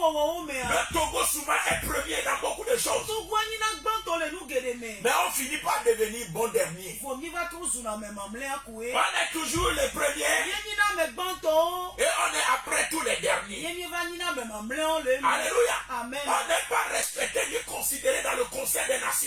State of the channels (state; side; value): identical; both; correlation 1.00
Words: Togo souvent est premier dans beaucoup de choses. Mais on finit par devenir bon dernier. On est toujours les premiers et on est après tous les derniers. Alléluia. Amen. On n'est pas respecté ni considéré dans le Conseil des